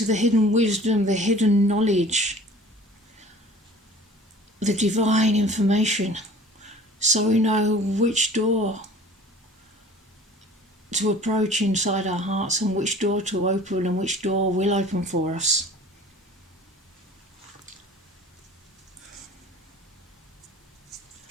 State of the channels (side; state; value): both; normal; correlation 0.46